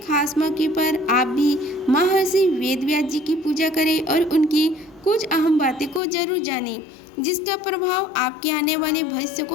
खास मौके पर आप भी महर्षि वेद व्यास जी की पूजा करें और उनकी कुछ अहम बातें को जरूर जानें, जिसका प्रभाव आपके आने वाले भविष्य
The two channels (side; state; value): right; drops out; at 6.0 s